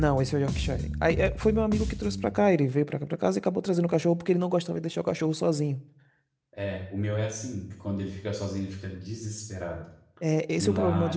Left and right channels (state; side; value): identical; both; correlation 1.00